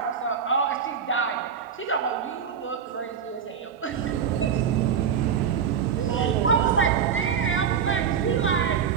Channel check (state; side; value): quieter; left; 7.4 dB